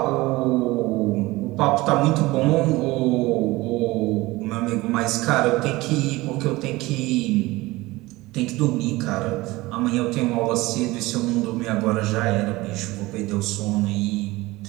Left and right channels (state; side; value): quieter; left; 20.2 dB